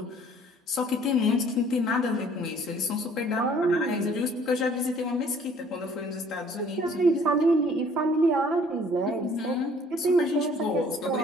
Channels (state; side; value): normal; both; correlation 0.56